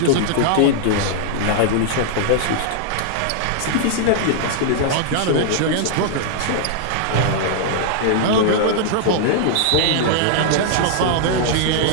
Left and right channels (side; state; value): both; different; correlation -0.01